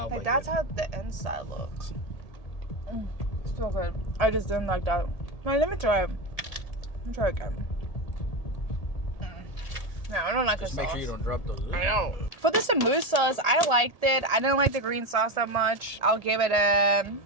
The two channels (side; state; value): right; late; 1.8 ms